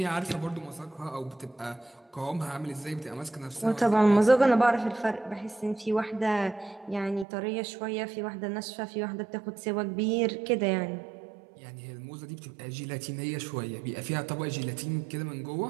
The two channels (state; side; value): drops out; left; at 7.2 s